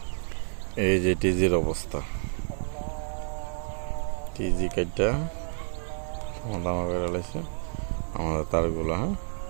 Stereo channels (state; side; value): silent; left; 58 dB below the other